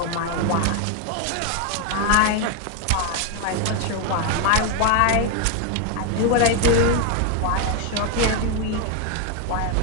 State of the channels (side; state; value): both; different; correlation 0.01